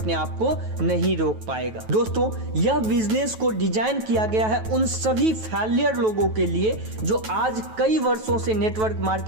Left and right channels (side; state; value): left; late; 9.2 ms